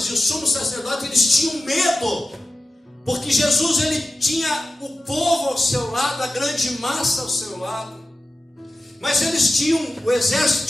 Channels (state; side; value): normal; both; correlation 0.94